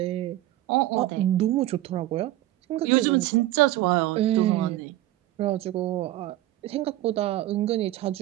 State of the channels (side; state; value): left; quieter; 15.2 dB